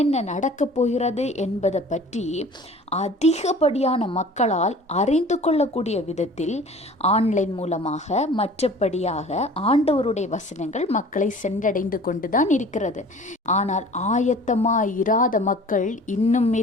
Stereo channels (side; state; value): both; normal; correlation 0.46